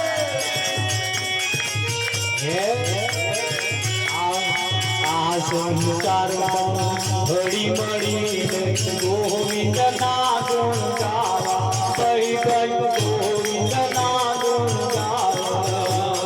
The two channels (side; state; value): both; identical; correlation 1.00